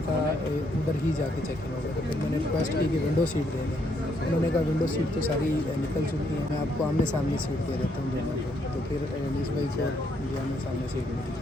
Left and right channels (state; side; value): normal; both; correlation 0.73